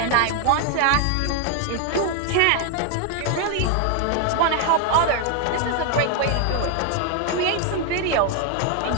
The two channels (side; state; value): both; different; correlation 0.01